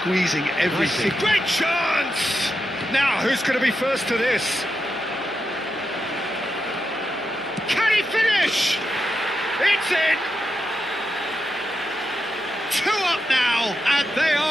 everything. Nicely. Great chance! Now, who's going to be first to this? Can he finish? It's in! 2 up now, and they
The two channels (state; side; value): noise; left; hum, 29 dB below the sound